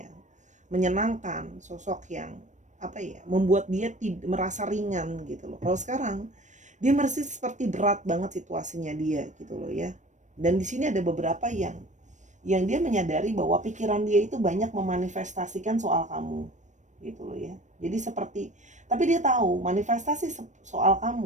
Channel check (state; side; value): late; left; 0.35 ms